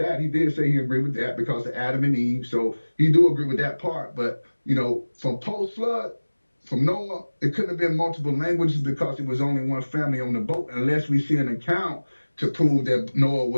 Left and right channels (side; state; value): both; inverted; correlation -1.00